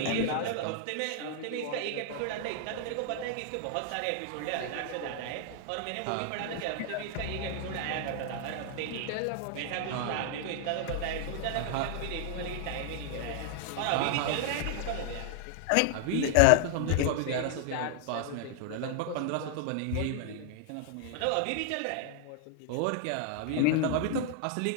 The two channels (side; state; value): both; different; correlation 0.00